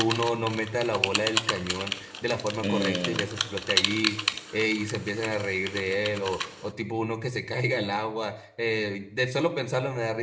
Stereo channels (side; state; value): both; identical; correlation 1.00